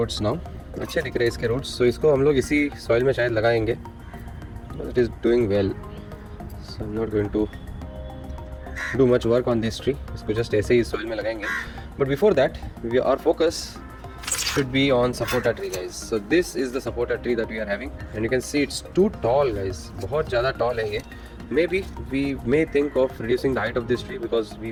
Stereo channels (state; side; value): identical; both; correlation 1.00